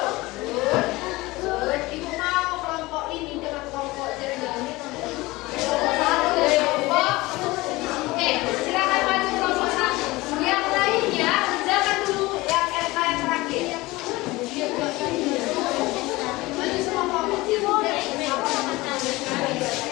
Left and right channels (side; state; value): right; quieter; 20.7 dB